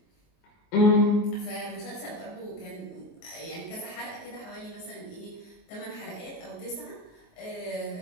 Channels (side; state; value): right; late; 19 ms